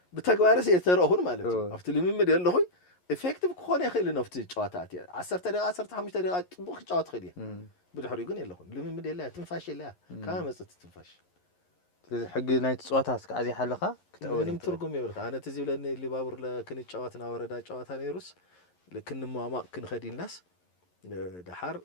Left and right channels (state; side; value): late; right; 11 ms